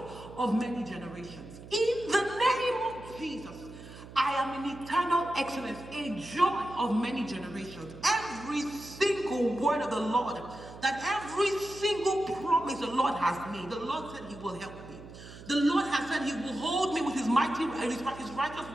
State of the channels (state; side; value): noise; right; hum, 16 dB below the sound